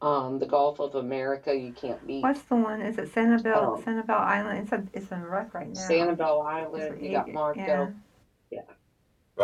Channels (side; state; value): both; identical; correlation 1.00